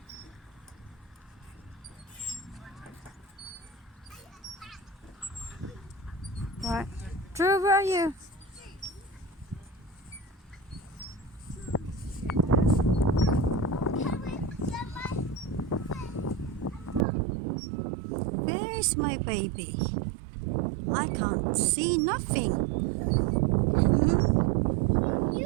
Right. Drew, where are you? Where's my baby? I can't see nothing.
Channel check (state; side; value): drops out; left; at 17.1 s